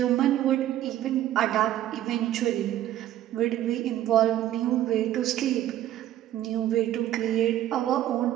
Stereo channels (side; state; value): left; quieter; 12.8 dB